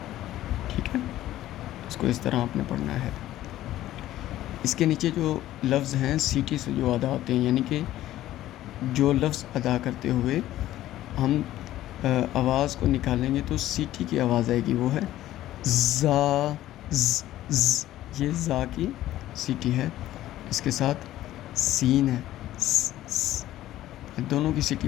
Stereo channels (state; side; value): quieter; right; 14.1 dB